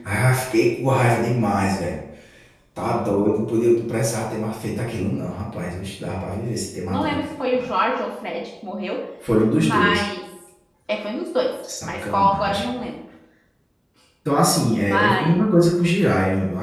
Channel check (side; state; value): both; identical; correlation 1.00